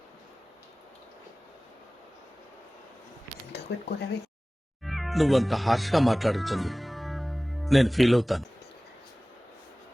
ఎంత పెట్టుకోలేవి నువ్వంత హార్ష్గా మాట్లాడుతుంది నేను ఫీల్ అవుతాను.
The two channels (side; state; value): both; normal; correlation 0.98